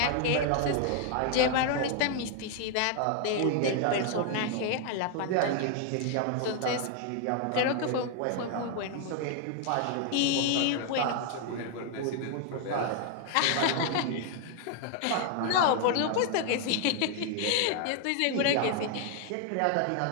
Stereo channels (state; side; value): different; both; correlation 0.00